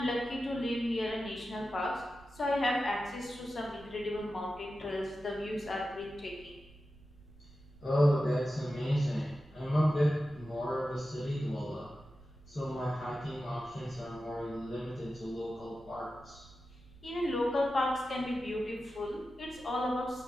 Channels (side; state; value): right; noise; rumble, 22 dB below the sound